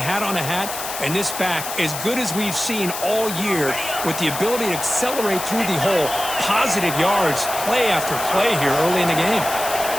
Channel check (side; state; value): left; noise; hiss, 7 dB below the sound